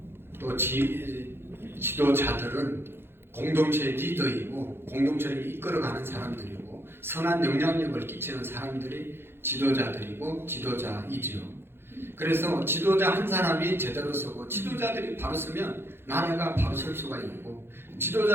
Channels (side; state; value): left; late; 0.11 ms